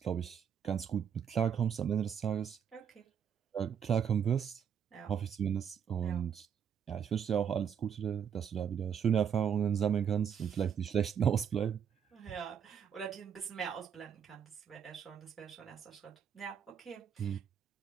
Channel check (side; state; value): left; quieter; 7.9 dB